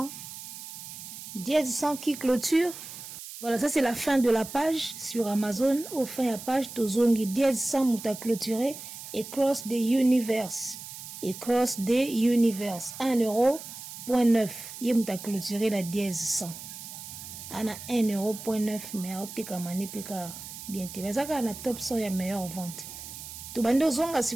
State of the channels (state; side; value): noise; right; hiss, 12 dB below the sound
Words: Dièse 100 qui clôture. Voilà, ça c'est la fin de la page sur Amazon. Au fin de la page, tozongi dièse 100 mouta clôturé et cross the universe. Et cross the universe. 1,9 €. Yé mouta clôturé la dièse 100. Ana 1,9 €, mais optika mani pika bien te. Mais ça quand on a top 100, il y a meilleure vente. Tout bando zonga